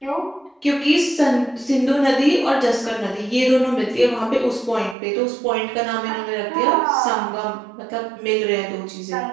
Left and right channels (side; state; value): left; drops out; at 5.0 s